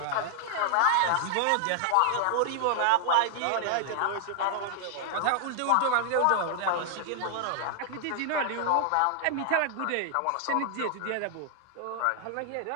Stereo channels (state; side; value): different; both; correlation 0.00